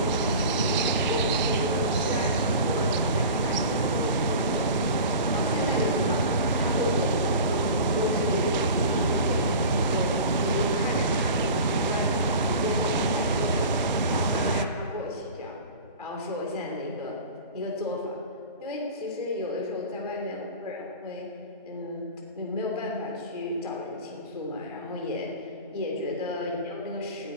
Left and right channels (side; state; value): both; inverted; correlation -0.36